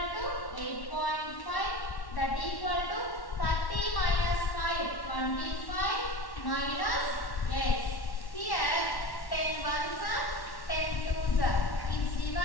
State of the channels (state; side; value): late; right; 1.1 ms